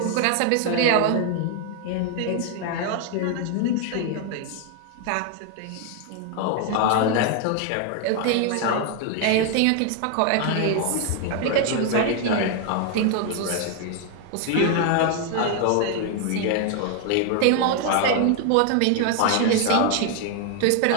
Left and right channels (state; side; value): different; both; correlation 0.01